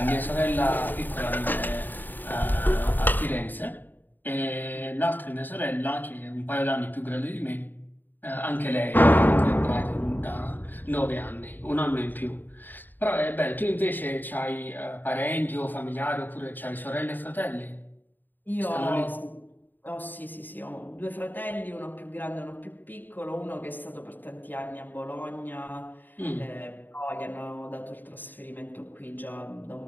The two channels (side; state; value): right; late; 0.090 ms